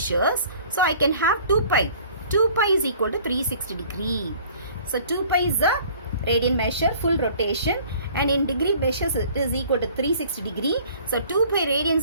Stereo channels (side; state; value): both; inverted; correlation -0.51